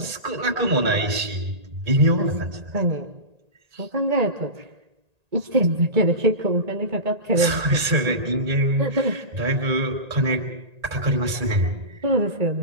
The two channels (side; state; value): left; late; 1.8 ms